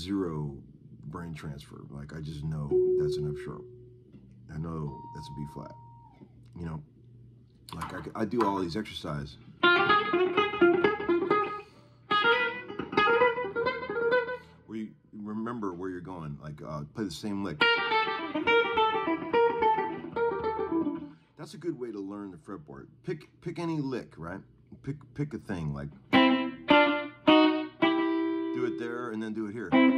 brain transfer. Like, I just know that's an F sharp. I know that's a B flat. Like I do all these exercises. Where you remember where you're going. Like, play the same lick. That's a good way to learn the fretboard. Pick any lick, right? Pick a thing, like do it there, and then do it here,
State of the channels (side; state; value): both; identical; correlation 1.00